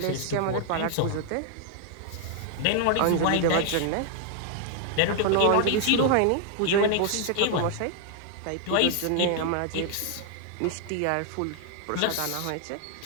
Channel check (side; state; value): both; different; correlation 0.00